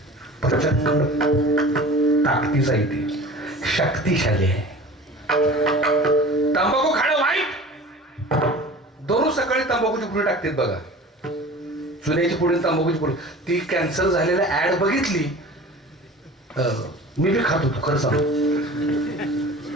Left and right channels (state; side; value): normal; both; correlation 0.40